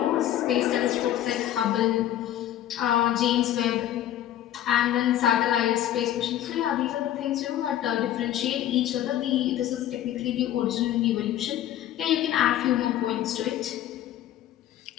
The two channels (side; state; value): right; quieter; 12.1 dB